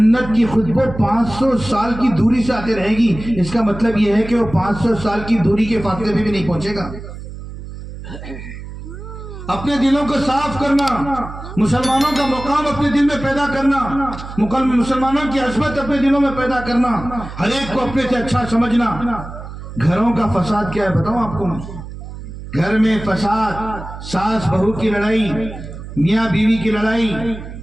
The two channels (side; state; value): right; noise; hum, 12 dB below the sound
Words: کی خوشبو 500 سال کی دوری سے آتے رہے گی. اس کا مطلب یہ ہے کہ وہ 500 سال کی دوری کے فاصلے میں بھی نہیں پہنچے گا. اپنے دلوں کو صاف کرنا, مسلمانوں کا مقام اپنے دل میں پیدا کرنا, مسلمانوں کی عظمت اپنے دلوں میں پیدا کرنا, ہر ایک کو اپنے سے اچھا سمجھنا. گھروں کا فساد کیا ہے بتاؤں آپ کو میں. گھر میں فساد، ساس بہو کی لڑائی، میاں بیوی کی لڑائی،